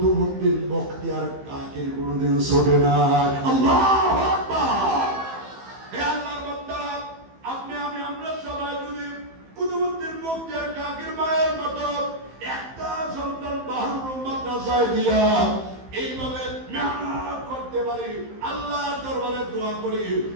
বখতিয়ার কাকির কোনোদিন ছোটে না। আল্লাহু আকবার। হে আল্লাহর বান্দারা, আপনি আমি আমরা সবাই যদি কুতুবউদ্দিন বখতিয়ার কাকির মায়ের মতো একটা সন্তান বাহরুল মাদ্রাসায় দিয়া এইভাবে মেহনত করতে পারি, আল্লাহর দরবারে দোয়া করি,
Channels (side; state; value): left; late; 15 ms